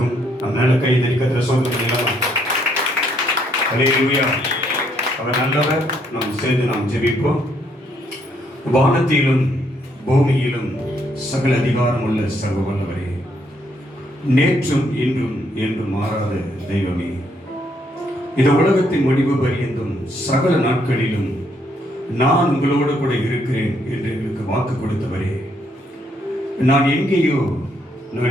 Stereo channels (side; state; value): both; normal; correlation 0.71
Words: நம் நல்ல கை தரிக்கத்திர சொல்லுங்கள். அல்லேலூயா. அவர் நல்லவர். நாம் சேர்ந்து நாம் ஜெபிப்போம். வானத்திலும் பூமியிலும் சகல அதிகாரம் உள்ள சர்வ வல்லவரே, நேற்றும் இன்றும் என்றும் மாறாத தெய்வமே, இந்த உலகத்தின் முடிவு பரியந்தும் சகல நாட்களிலும் நான் உங்களோடு கூட இருக்கிறேன் என்று எங்களுக்கு வாக்கு கொடுத்தவரே, நான் எங்கே